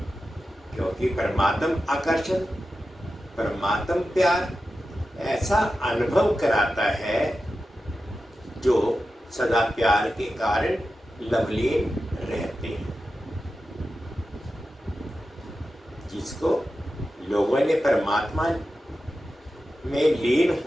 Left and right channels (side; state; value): both; normal; correlation 0.92